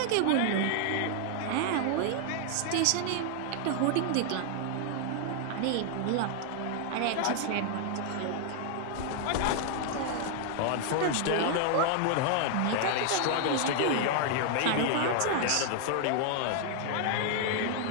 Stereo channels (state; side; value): different; both; correlation 0.00